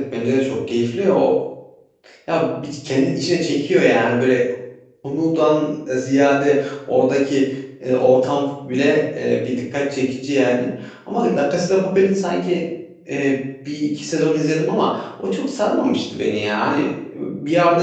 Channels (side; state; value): both; identical; correlation 1.00